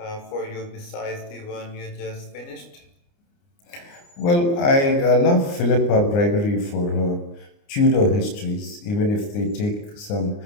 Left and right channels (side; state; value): right; late; 29 ms